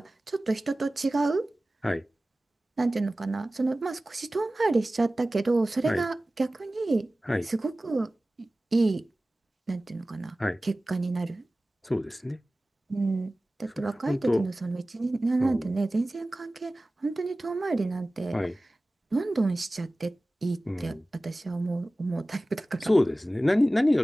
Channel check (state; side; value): normal; both; correlation 0.97